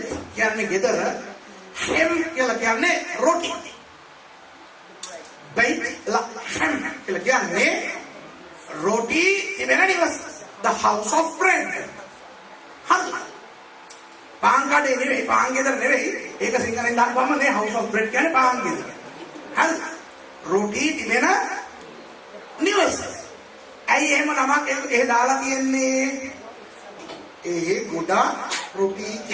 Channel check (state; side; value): identical; both; correlation 1.00